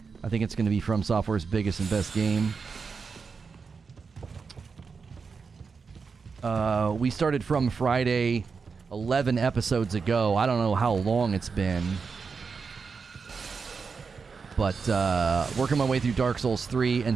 I think it's going to be From Software's biggest and best game. We started From Friday 11 episodes ago. I don't know how long it's been. But working my way through Dark Souls 3, and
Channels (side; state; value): left; quieter; 5.2 dB